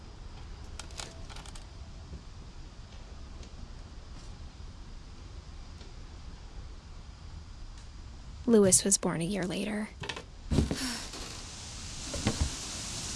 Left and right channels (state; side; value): identical; both; correlation 1.00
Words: Louis was born a year later.